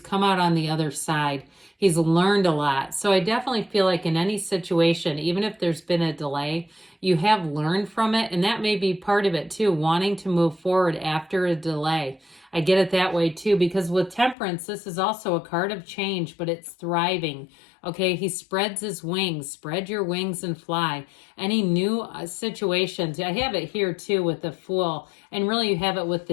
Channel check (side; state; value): right; drops out; at 14.4 s